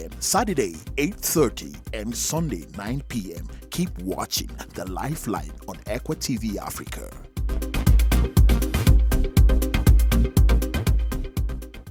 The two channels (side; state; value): both; identical; correlation 1.00